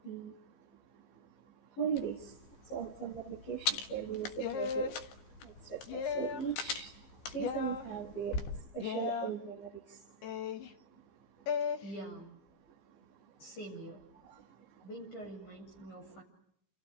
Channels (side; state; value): right; late; 15 ms